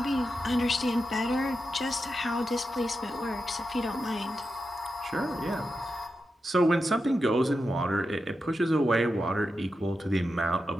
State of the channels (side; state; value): both; normal; correlation 0.89